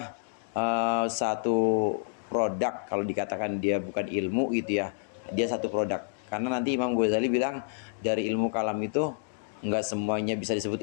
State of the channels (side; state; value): right; silent; digital silence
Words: satu produk. Kalau dikatakan dia bukan ilmu itu ya, dia satu produk. Karena nanti Imam Ghazali bilang dari ilmu kalam itu enggak semuanya bisa disebut